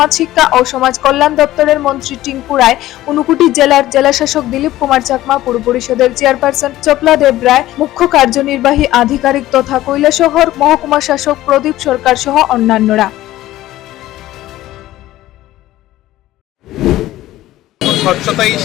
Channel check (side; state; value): right; quieter; 15.3 dB